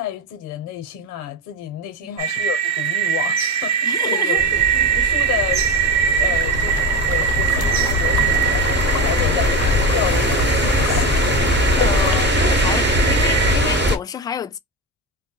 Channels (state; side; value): normal; both; correlation 0.18